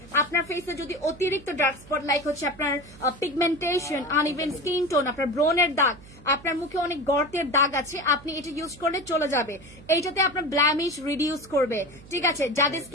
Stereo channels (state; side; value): noise; right; hum, 21 dB below the sound